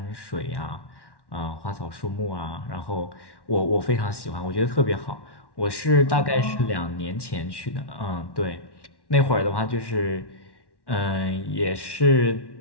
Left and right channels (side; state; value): right; late; 1.1 ms